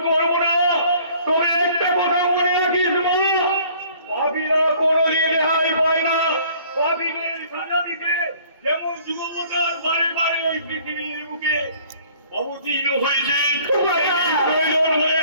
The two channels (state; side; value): inverted; both; correlation -0.55